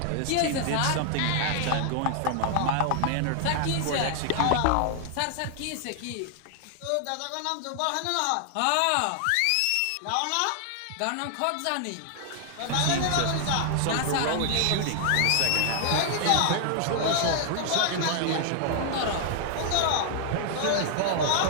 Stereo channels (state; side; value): different; both; correlation 0.00